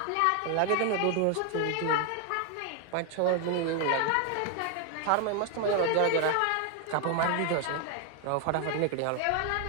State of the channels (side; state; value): both; different; correlation 0.01